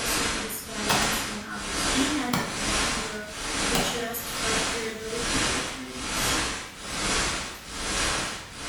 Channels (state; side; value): identical; both; correlation 1.00